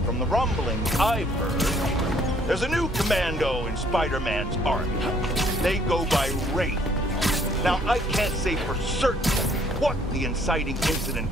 From the rumblings I've heard, there's a new commando in Spider-Man's army. They go by Raid. Now, I can't say for certain what the inciting incident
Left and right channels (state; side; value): normal; both; correlation 0.62